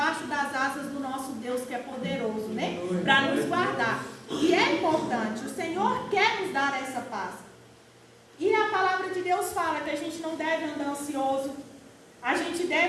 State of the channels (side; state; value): both; identical; correlation 1.00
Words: das asas do nosso Deus, que é poderoso, né? Para nos guardar. E é importante, o Senhor quer nos dar essa paz. E a palavra de Deus fala que a gente não deve andar ansioso. A gente